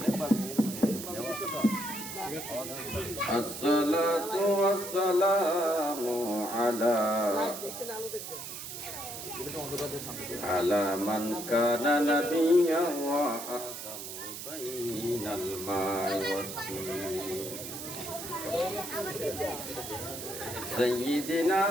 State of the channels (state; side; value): noise; right; hiss, 9 dB below the sound